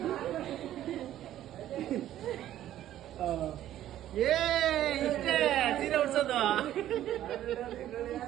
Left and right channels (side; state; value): left; quieter; 12.5 dB